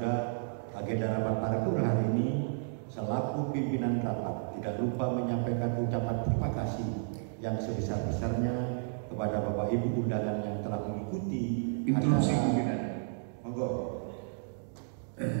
agenda rapat paripurna hari ini. Selaku pimpinan rapat tidak lupa menyampaikan ucapan terima kasih yang sebesar-besarnya kepada Bapak Ibu undangan yang telah mengikuti instruksi pimpinan. Monggo.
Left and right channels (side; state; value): left; silent; digital silence